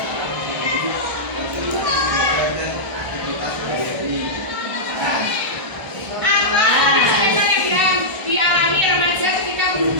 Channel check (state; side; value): late; left; 1.3 ms